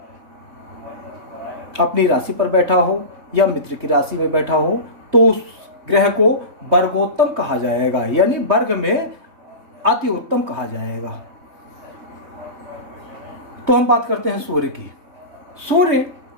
अपनी राशि पर बैठा हो या मित्र की राशि में बैठा हो, तो उस ग्रह को वर्गोत्तम कहा जाएगा, यानी वर्ग में अति उत्तम कहा जाएगा। तो हम बात करते हैं सूर्य की। सूर्य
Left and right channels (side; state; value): left; late; 3.2 ms